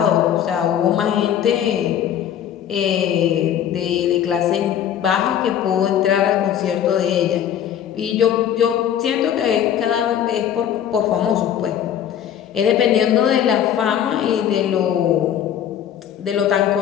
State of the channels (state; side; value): quieter; right; 9.9 dB